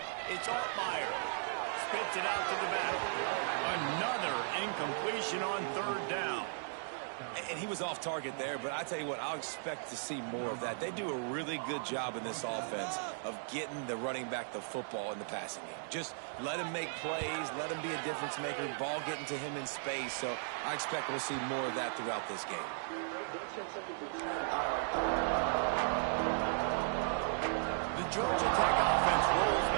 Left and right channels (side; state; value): left; silent; digital silence